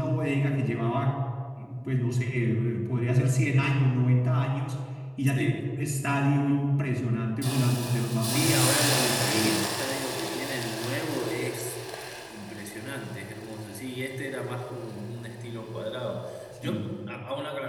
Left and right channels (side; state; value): both; identical; correlation 1.00